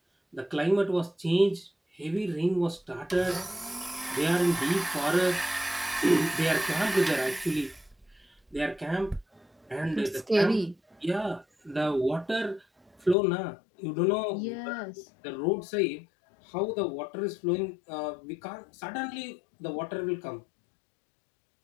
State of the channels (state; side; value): drops out; right; at 13.2 s